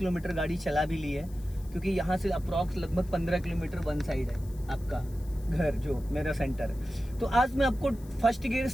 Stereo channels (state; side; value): noise; left; hiss, 24 dB below the sound